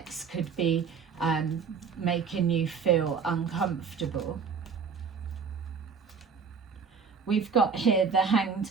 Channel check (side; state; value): left; quieter; 5.9 dB